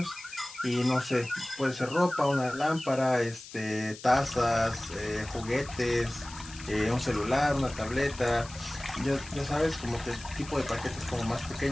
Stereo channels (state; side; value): noise; left; hiss, 16 dB below the sound